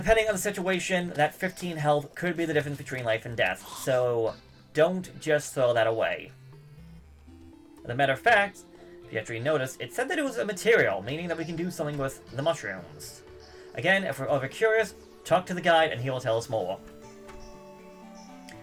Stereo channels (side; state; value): both; identical; correlation 1.00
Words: on the situation, that 15 health could be the difference between life and death. So, don't just throw that away. As a matter of fact, if you actually notice, it said that it was a material, meaning that we can do something with the mushrooms. Again, if we're ever curious, talk to the guide and he will tell us more.